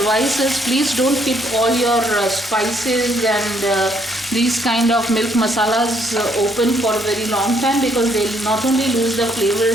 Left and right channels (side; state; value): both; normal; correlation 0.69